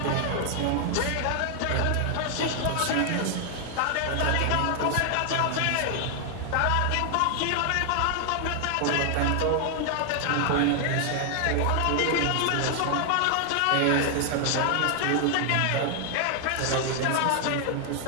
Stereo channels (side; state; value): both; different; correlation 0.00